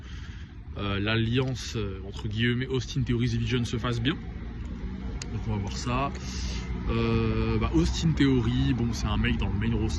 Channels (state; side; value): identical; both; correlation 1.00